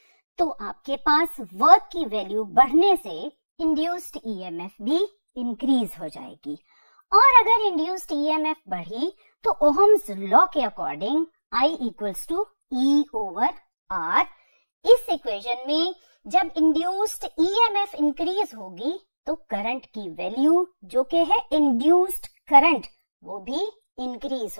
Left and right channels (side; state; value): both; inverted; correlation -1.00